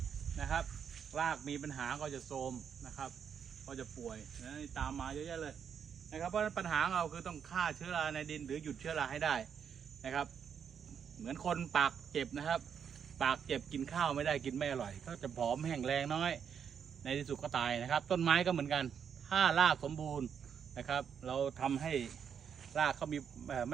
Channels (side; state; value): left; quieter; 7.5 dB